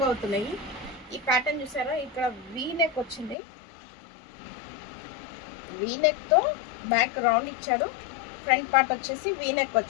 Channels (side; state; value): right; drops out; at 3.4 s